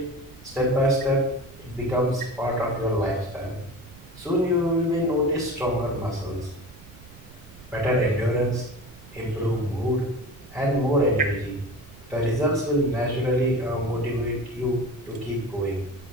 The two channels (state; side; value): noise; right; rumble, 21 dB below the sound